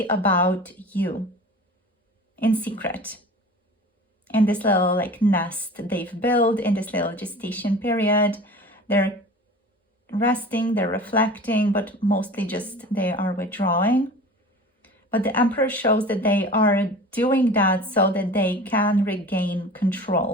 about you in secret. In this little like nest they've built in this little gestation period, they're resting, they're reflecting, but mostly just they are withdrawing. But the Emperor shows that they are doing that so that they can regain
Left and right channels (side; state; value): both; normal; correlation 0.39